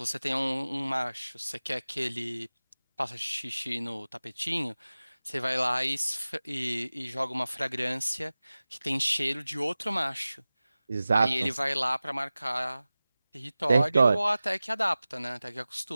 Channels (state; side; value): inverted; both; correlation -0.97